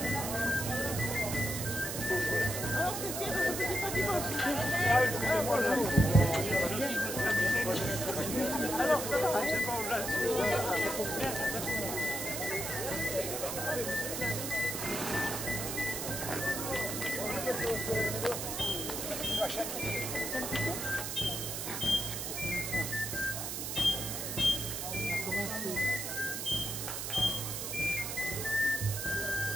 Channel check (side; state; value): right; noise; hiss, 4 dB below the sound